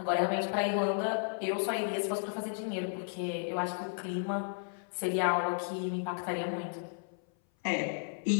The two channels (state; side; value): silent; right; 55 dB below the other